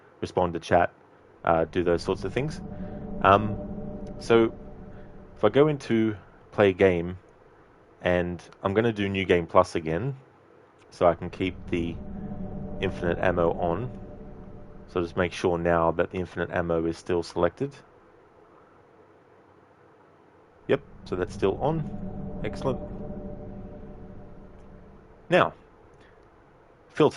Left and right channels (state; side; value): identical; both; correlation 1.00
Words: respond to chat, do those sorts of things. So if I go into play game, and I'm going to do New Game Plus again, so I can keep the infinite ammo on. So just make sure now that the infinite ammo is still selected. Yep, so that's still on. Excellent. Now,